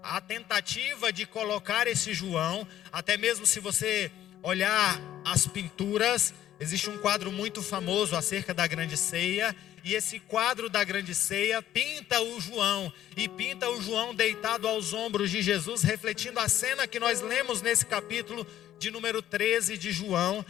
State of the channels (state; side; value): quieter; right; 12.2 dB